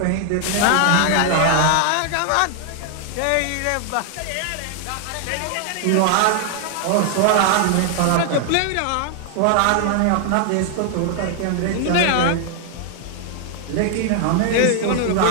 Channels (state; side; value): different; both; correlation 0.00